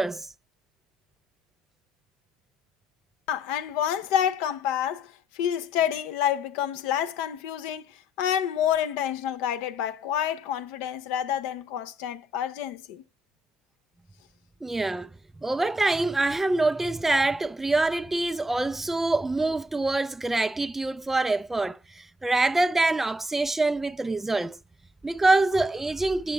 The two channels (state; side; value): normal; both; correlation 0.72